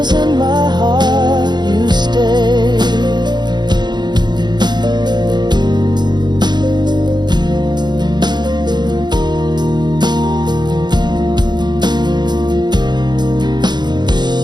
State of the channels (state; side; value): late; left; 0.21 ms